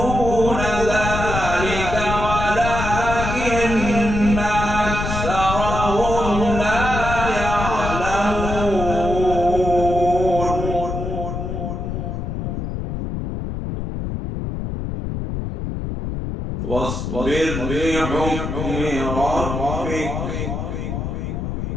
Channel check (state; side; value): noise; left; rumble, 4 dB below the sound